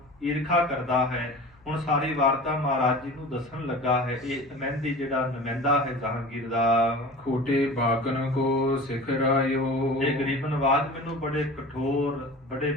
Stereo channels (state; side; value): noise; left; hum, 29 dB below the sound